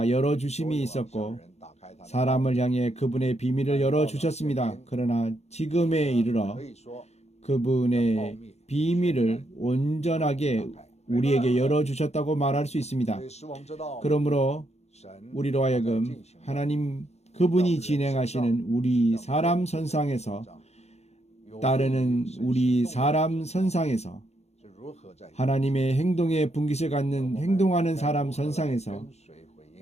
열어주심이 있었고 사람을 향해 그분의 비밀을 열어주셨습니다. 그러나 지금에 이르러 그분의 비밀을 온전하게 우리에게 열어주셨다고 말할 수 있습니다. 그러므로 우리로 하여금 하나님 그분이 진행하시는 우리 사람 선상에서 따르는 우리 사람 선상에서 하나님의 행동에 분깃을 갖는 행동하는 사람 선상에서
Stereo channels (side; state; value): right; late; 0.31 ms